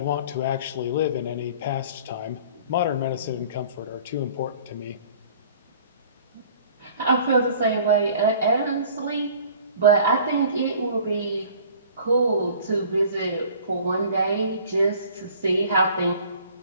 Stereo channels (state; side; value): inverted; both; correlation -0.49